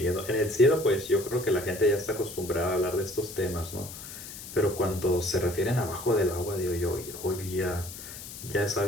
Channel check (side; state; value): left; noise; hiss, 12 dB below the sound